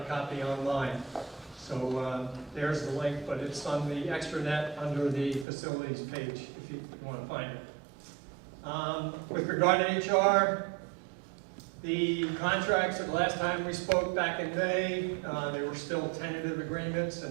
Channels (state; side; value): drops out; left; at 5.5 s